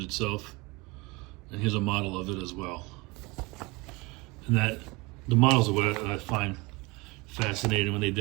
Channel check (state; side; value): quieter; left; 24.9 dB